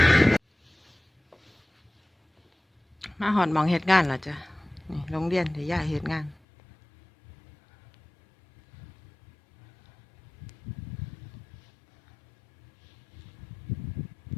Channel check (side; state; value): right; drops out; at 6.4 s